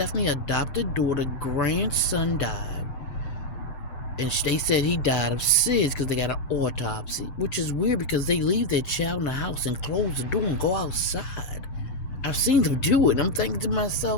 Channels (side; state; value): right; late; 7.9 ms